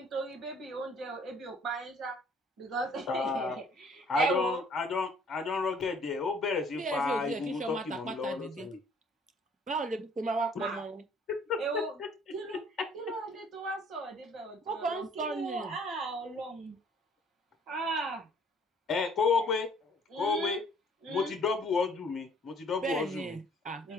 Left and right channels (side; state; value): both; normal; correlation 0.58